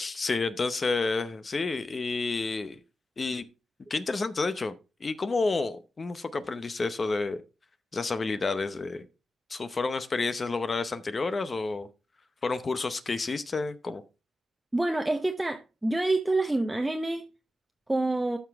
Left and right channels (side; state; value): both; normal; correlation 0.92